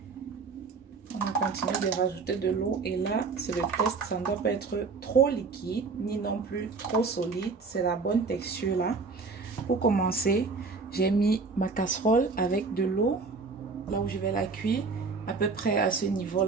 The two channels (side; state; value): left; quieter; 4.4 dB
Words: Continuer de rajouter de l'eau et là c'est le test, ça ne doit pas être trop liquide ni non plus trop solide, c'est la bonne texture là. Pour commencer, j'ai mis ma casserole avec de l'eau là où je vais la cuire, à peu près à ce niveau